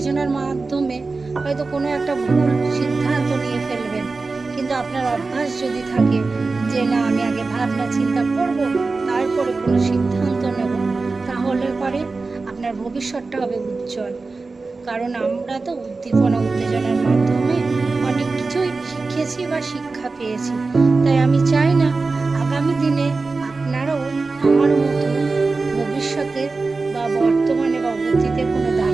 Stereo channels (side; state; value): left; quieter; 3.9 dB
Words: মাধ্যমে হয়তো কোনো একটা ভুল সিদ্ধান্ত নিয়ে ফেলবেন, কিন্তু আপনার অভ্যাস যদি থাকে যে না, আমি আগে ভাবনা চিন্তা করব তারপরে কোনো সিদ্ধান্ত নেব, তাহলে পরে আপনার ভবিষ্যৎটা হবে উজ্জ্বল। কারণ আমরা তো উদ্দীপনা উত্তেজনার মাধ্যমে অনেক কিছুই শিখেছি বা শিক্ষা পেয়েছি। তাই আমি চাই না আগামী দিনে আপনারাও আমার মতো ভবিষ্যতে বা বর্তমানে বা অতীতে কোনো